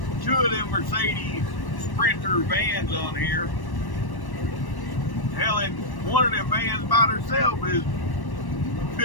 2 of them Mercedes Sprinter vans on here. Hell, and one of them vans by herself is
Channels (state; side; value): late; right; 1.1 ms